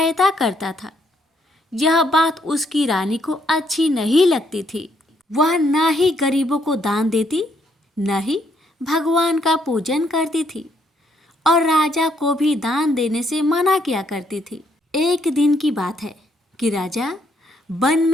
करता था। यह बात उसकी रानी को अच्छी नहीं लगती थी। वह न ही गरीबों को दान देती, न ही भगवान का पूजन करती थी और राजा को भी दान देने से मना किया करती थी। एक दिन की बात है कि राजा वन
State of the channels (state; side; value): normal; both; correlation 0.72